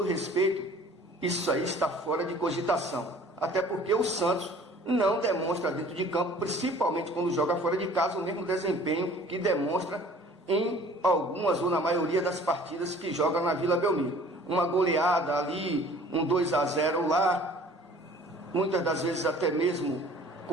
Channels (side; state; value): both; normal; correlation 0.50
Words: respeito, isso aí está fora de cogitação. Até porque o Santos não demonstra dentro de campo, principalmente quando joga fora de casa, o mesmo desempenho que demonstra em algumas ou na maioria das partidas que joga na Vila Belmiro. Uma goleada ali, um 2-0 lá, muitas das vezes até mesmo